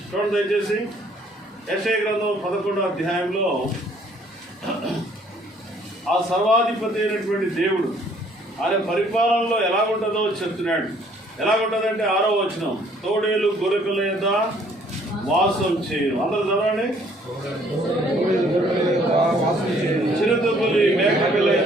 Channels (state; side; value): normal; both; correlation 0.61